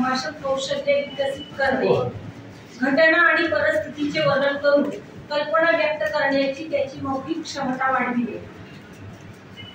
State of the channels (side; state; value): both; identical; correlation 1.00